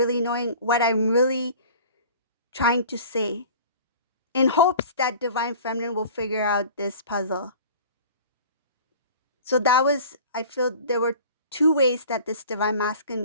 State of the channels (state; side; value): inverted; both; correlation -0.43